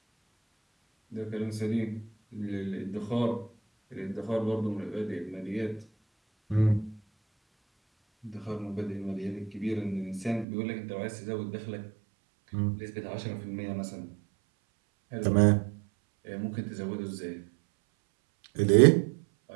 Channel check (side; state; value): left; drops out; at 10.5 s